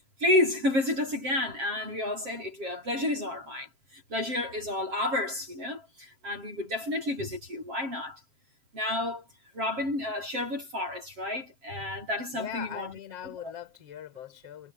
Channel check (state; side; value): late; left; 7.5 ms